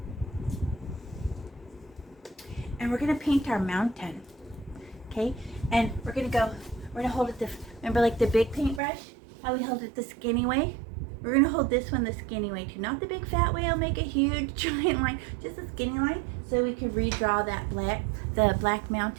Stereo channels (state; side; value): drops out; left; at 8.8 s